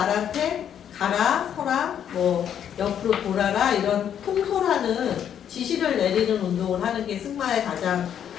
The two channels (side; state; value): right; quieter; 9.2 dB